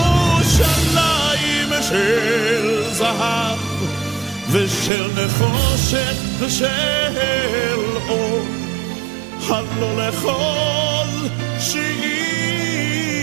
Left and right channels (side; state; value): left; drops out; at 4.9 s